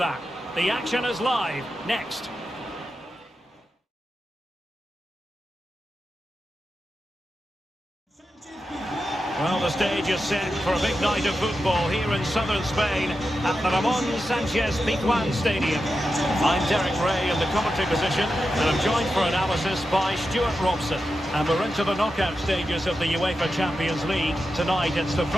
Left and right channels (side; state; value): both; normal; correlation 0.89